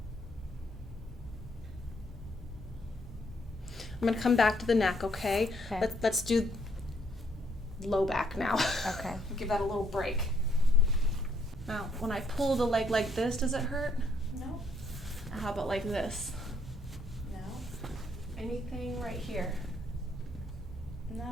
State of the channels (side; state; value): both; normal; correlation 0.70